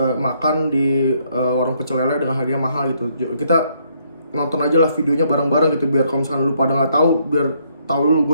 di warung pecel lele dengan harganya mahal gitu. Kita nonton aja lah videonya bareng-bareng gitu biar kalau misalkan lu pada nggak tahu, biar tahu dulu. Gue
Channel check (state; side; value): inverted; both; correlation -0.70